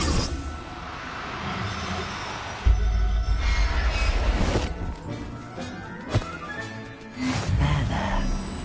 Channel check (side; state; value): both; identical; correlation 1.00